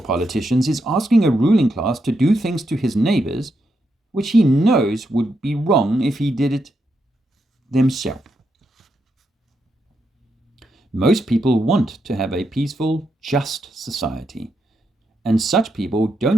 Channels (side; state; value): both; normal; correlation 0.82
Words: politicians is asking a ruling class to do things to his neighbors which he knows would be wrong if he did it themselves. Most people want to have a peaceful, just society, and such people